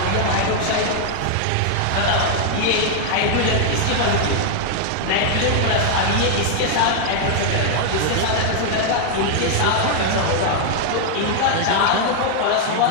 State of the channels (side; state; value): both; different; correlation 0.00